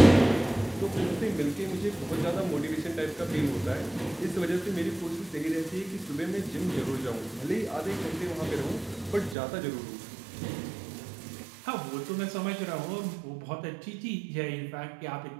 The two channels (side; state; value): left; drops out; at 9.3 s